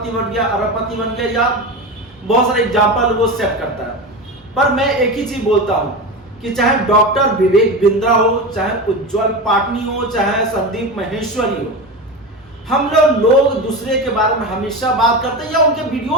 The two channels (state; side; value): normal; both; correlation 0.23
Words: बन गया, अरबपति बन गया, या बहुत सारे एग्जाम्पल वो सेट करता है। पर मैं एक ही चीज बोलता हूँ कि चाहे डॉक्टर विवेक बिंद्रा हो, चाहे उज्जवल पाटनी हो, चाहे संदीप माहेश्वरी हो, हम लोग दूसरे के बारे में हमेशा बात करते हैं या उनके